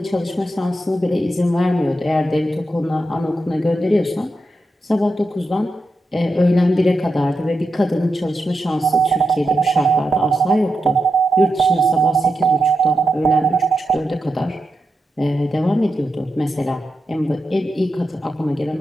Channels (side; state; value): both; normal; correlation 0.87